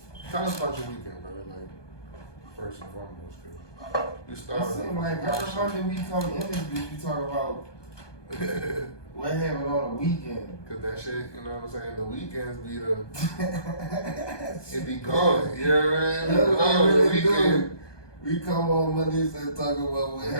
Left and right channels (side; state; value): right; late; 1.2 ms